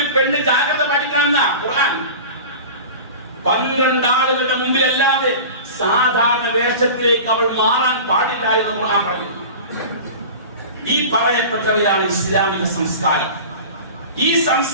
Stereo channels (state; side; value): inverted; both; correlation -0.35